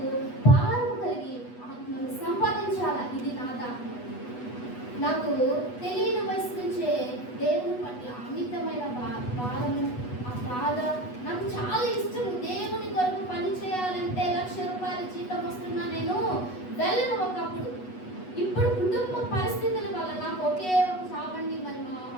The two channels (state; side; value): late; right; 8.1 ms